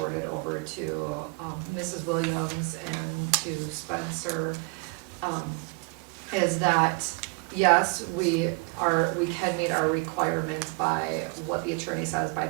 over to Mrs. Williams and to Spencer, is that, yes, we can meet our requirements by what the attorney says by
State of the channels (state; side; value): quieter; left; 31.1 dB